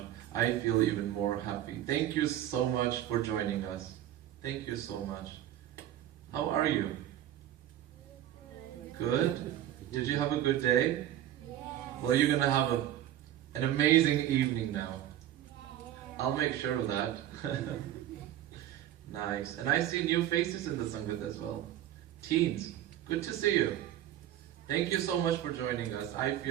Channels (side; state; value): left; quieter; 12.2 dB